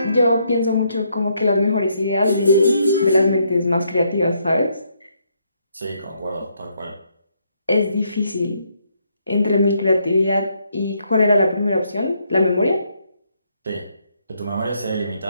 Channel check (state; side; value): inverted; both; correlation -0.74